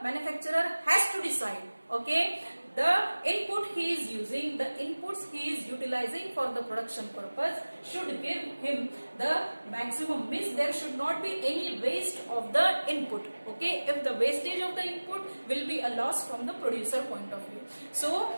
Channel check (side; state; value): both; inverted; correlation -1.00